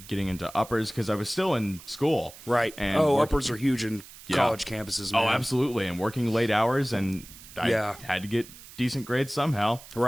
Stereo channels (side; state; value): right; noise; hiss, 18 dB below the sound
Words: getting into uppers because I was still in school. Right. And uppers are huge in college campuses, man. Oh, absolutely. And working late hours, and I had to get decent grades somehow.